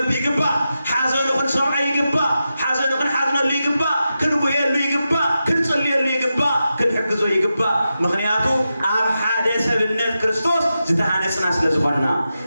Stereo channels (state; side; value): inverted; both; correlation -0.90